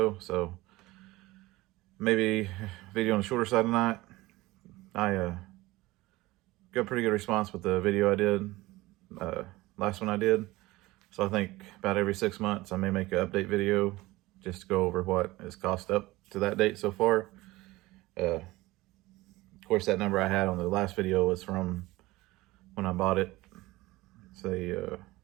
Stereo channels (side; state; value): left; quieter; 19.5 dB